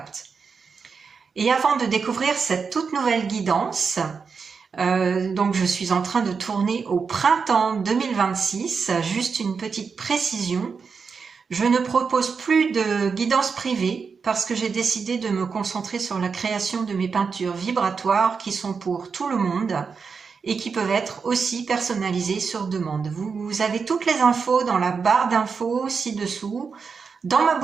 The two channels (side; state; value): left; quieter; 5.5 dB